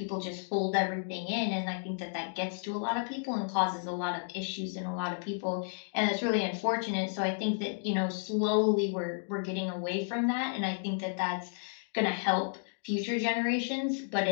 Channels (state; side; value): silent; right; digital silence